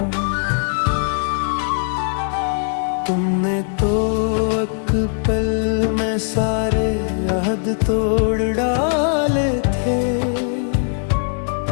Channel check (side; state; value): right; silent; 66 dB below the other